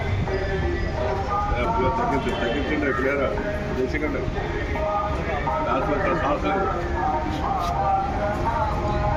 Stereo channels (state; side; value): identical; both; correlation 1.00